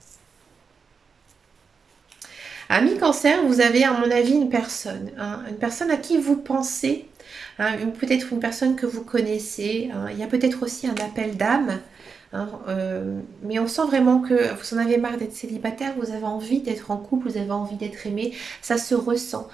Ami cancer, vous avez à mon avis une personne, hein, une personne à qui vous pensez, hein, peut-être une personne que vous connaissez, hein. Il y a peut-être aussi un appel d'âme, hein, mais on sent vraiment que vous en avez marre d'être célibataire, vous avez envie d'être en couple, vous avez envie d'être aimé, ça se ressent.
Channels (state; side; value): quieter; left; 5.5 dB